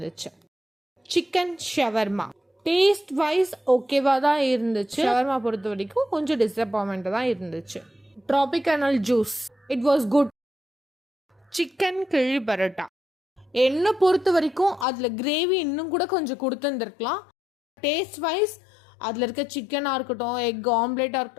சிக்கன் ஷவர்மா டேஸ்ட் வைஸ் ஓகேவா தான் இருந்துச்சு. ஷவர்மா பொறுத்த வரைக்கும் கொஞ்சம் டிசப்பாயின்மெண்ட் தான் இருந்துச்சு. Tropical juice it was good. Chicken கிழி பரோட்டா என்ன பொறுத்த வரைக்கும் அதுல கிரேவி இன்னும் கூட கொஞ்சம் கொடுத்துருந்துருக்கலாம். டேஸ்ட் வைஸ் அதில் இருக்க சிக்கனாக இருக்கட்டும், எக் ஆம்லேட்டாக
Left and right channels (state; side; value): drops out; right; at 14.9 s